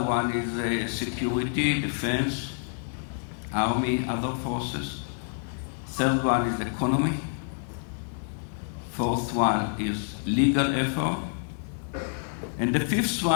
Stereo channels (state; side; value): silent; right; 59 dB below the other